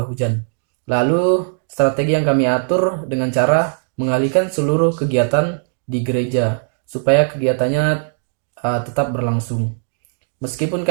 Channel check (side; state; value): left; silent; digital silence